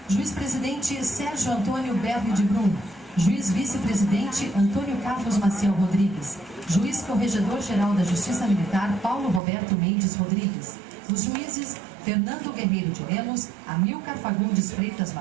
Juiz-presidente Sérgio Antônio Berni de Brum, juiz vice-presidente Antônio Carlos Maciel Rodrigues, juiz corregedor-geral da Justiça Militar Paulo Roberto Mendes Rodrigues, os juízes Fernando Guerreiro de Lemos, Amilcar Fagundes Freitas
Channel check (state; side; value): drops out; left; at 9.4 s